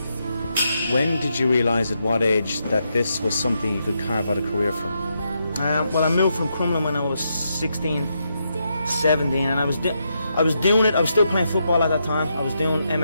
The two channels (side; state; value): both; inverted; correlation -0.82